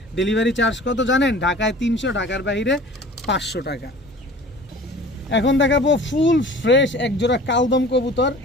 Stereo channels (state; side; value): normal; both; correlation 0.44